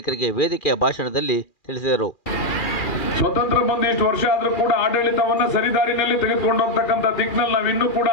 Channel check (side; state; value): right; late; 2.4 ms